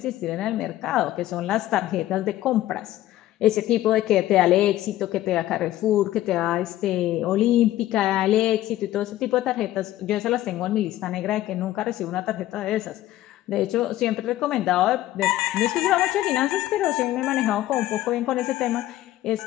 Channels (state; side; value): quieter; right; 14.5 dB